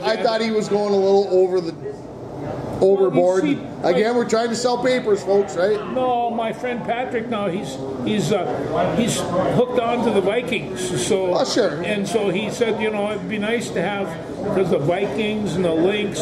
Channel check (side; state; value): both; identical; correlation 1.00